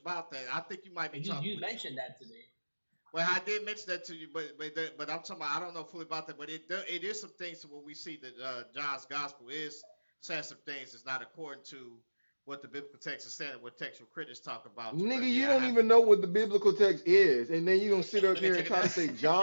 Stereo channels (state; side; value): inverted; both; correlation -1.00